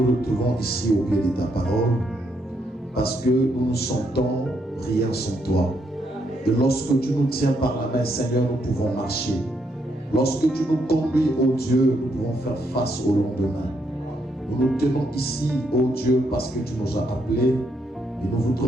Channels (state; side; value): normal; both; correlation 0.76